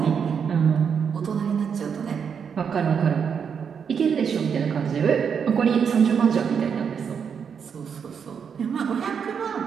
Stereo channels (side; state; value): left; quieter; 6.9 dB